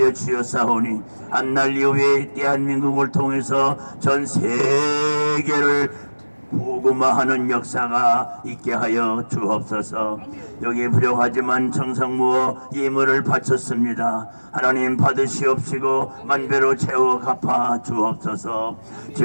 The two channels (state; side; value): inverted; both; correlation -1.00